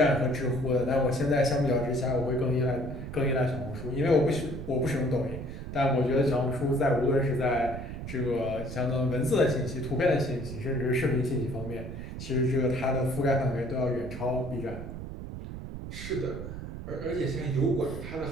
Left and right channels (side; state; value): right; noise; rumble, 8 dB below the sound